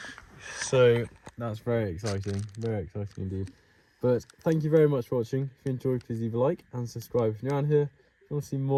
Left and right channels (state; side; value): identical; both; correlation 1.00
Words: so that's very exciting indeed. But thank you very much for watching. If you enjoyed, please leave a like and subscribe if you're around here. If you want to see